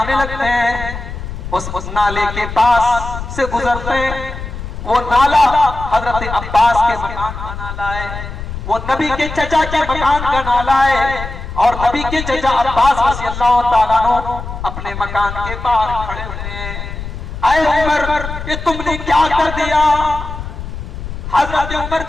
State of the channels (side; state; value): left; noise; rumble, 8 dB below the sound